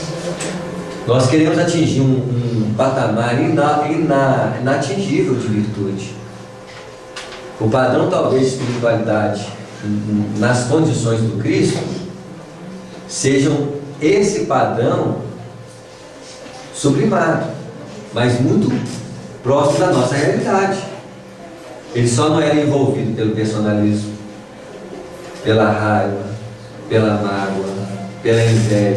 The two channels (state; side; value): identical; both; correlation 1.00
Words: Nós queremos atingir um patamar inatingível de virtude. O padrão talvez de espiritualidade nas condições do Cristo sejam esse padrão sublimado, mas muito próximo da nossa realidade. Ele só não era envolvido pelo personalismo, pela raiva, pela mágoa, pela